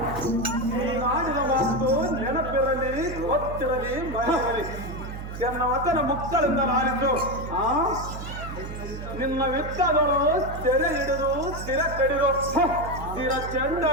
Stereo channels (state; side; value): noise; right; hum, 8 dB below the sound